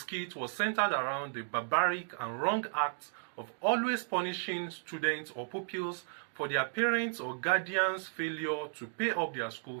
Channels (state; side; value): silent; left; digital silence